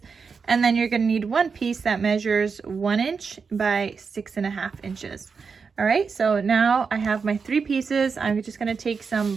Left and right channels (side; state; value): left; quieter; 5.4 dB